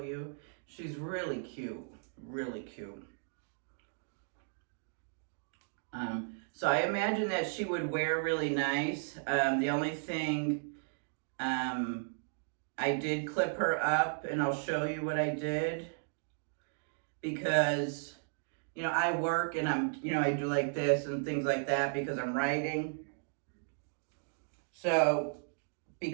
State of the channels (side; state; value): left; silent; digital silence